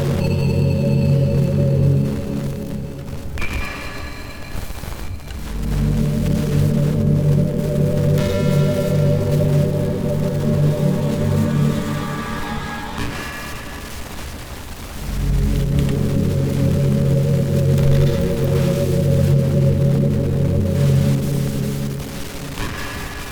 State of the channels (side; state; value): both; identical; correlation 1.00